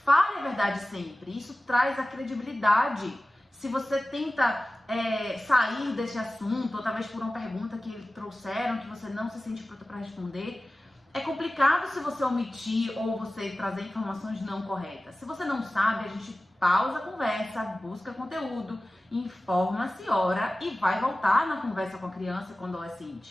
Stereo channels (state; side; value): normal; both; correlation 0.96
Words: a verdade sempre, isso traz a credibilidade. Se você tenta sair desse assunto, ou talvez por uma pergunta que trouxeram, que você não se sente pronta para responder, é complicado se você omitir ou você trazer informações não corretas. Se você não sabe, a gente pausa a conversa, busca conteúdo, informa-se, ora e vai voltar na conversa com a criança, com o